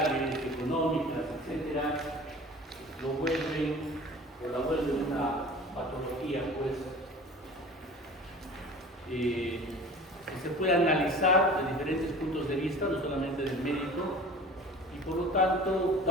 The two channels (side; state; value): both; normal; correlation 0.41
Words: económicas, etcétera, la vuelven una patología, pues, que se puede analizar de diferentes puntos de vista, no solamente del médico, y por lo tanto,